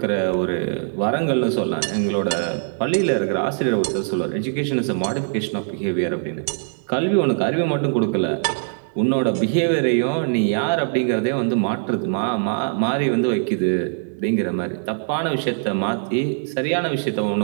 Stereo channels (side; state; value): left; silent; digital silence